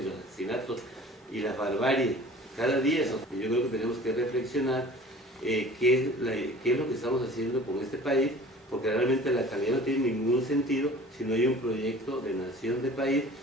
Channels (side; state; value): both; normal; correlation 0.45